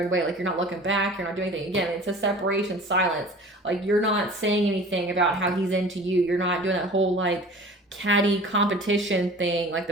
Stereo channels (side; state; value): both; normal; correlation 0.43